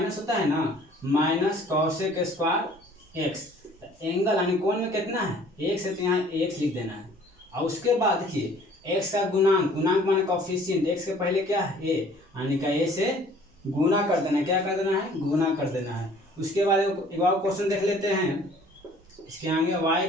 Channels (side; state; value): both; normal; correlation 0.54